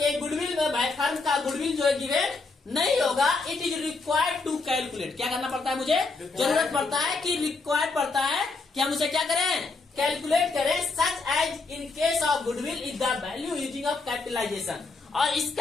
गुडविल में फर्म का गुडविल जो है गिवन नहीं होगा। It is required to calculate, क्या करना पड़ता है, मुझे जरूरत पड़ता है कि रिक्वायर्ड पड़ता है कि हम उसे क्या करें, कैलकुलेट करें। Such as in case of goodwill is the value using of capitalisation, और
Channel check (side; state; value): right; quieter; 3.9 dB